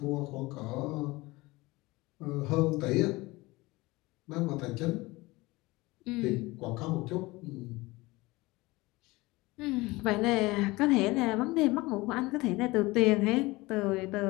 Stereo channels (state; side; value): quieter; right; 21.6 dB